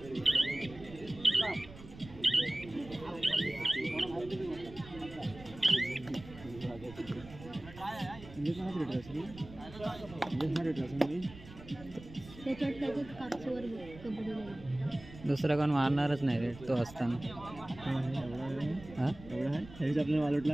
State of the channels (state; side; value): noise; right; rumble, 17 dB below the sound